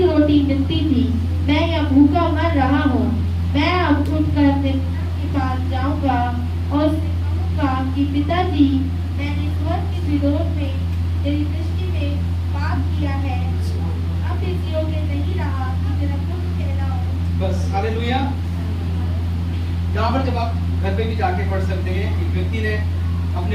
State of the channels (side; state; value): both; identical; correlation 1.00